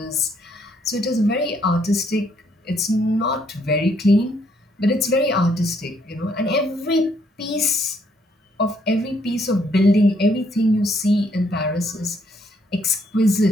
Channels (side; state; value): both; normal; correlation 0.70